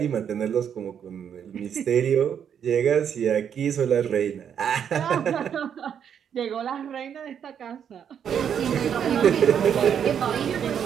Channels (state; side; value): quieter; left; 8.3 dB